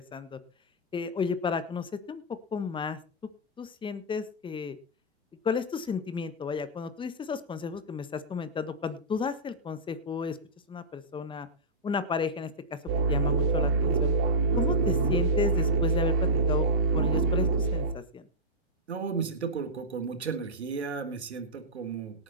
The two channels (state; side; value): normal; both; correlation -0.14